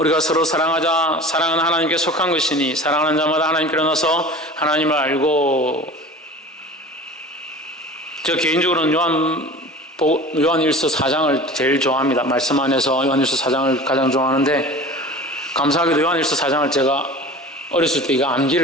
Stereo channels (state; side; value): normal; both; correlation 0.39